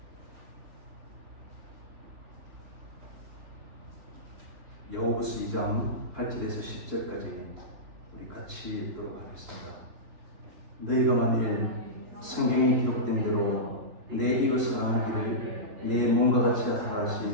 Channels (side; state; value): left; late; 3.4 ms